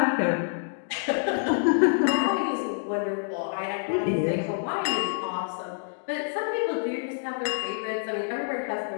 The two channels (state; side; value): silent; right; digital silence